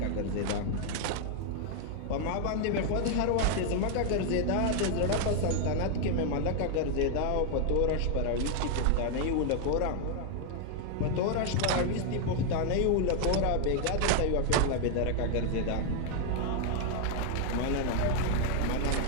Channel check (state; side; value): different; both; correlation 0.00